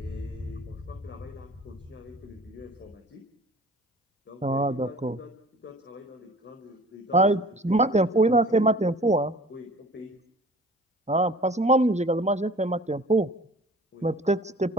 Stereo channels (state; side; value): normal; both; correlation 0.46